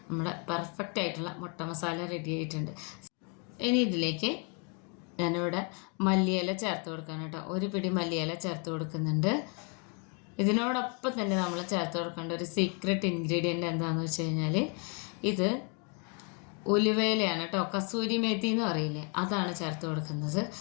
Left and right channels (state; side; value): quieter; right; 34.7 dB